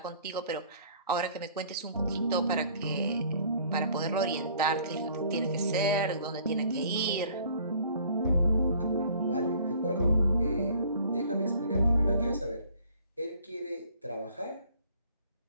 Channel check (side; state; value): both; inverted; correlation -0.55